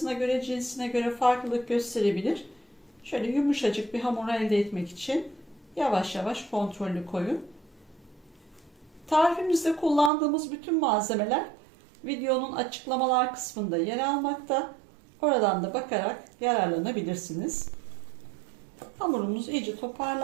göre, cinsine göre farklılık gösterebilir. Şöyle yumuşacık bir hamur elde etmek için yavaş yavaş kontrollü koyun. Tarifimizde kullandığımız bütün malzemeler videonun açıklamalar kısmında yer almakta. Oradan da bakarak yararlanabilirsiniz. Hamurumuz iyice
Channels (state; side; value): drops out; left; at 10.1 s